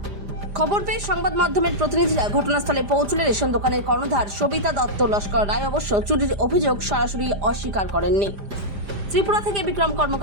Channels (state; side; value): late; left; 5.0 ms